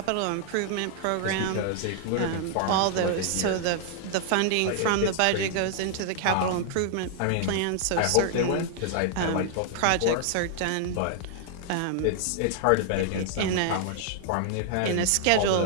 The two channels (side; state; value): both; different; correlation 0.00